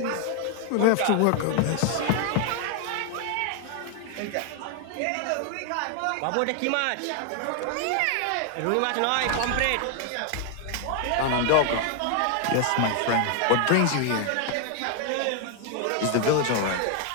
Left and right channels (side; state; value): both; different; correlation 0.00